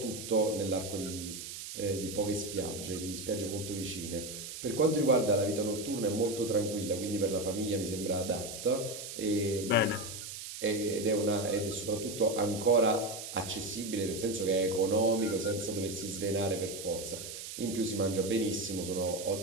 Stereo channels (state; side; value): noise; right; hiss, 9 dB below the sound